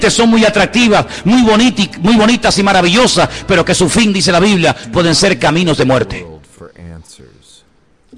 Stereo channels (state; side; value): identical; both; correlation 1.00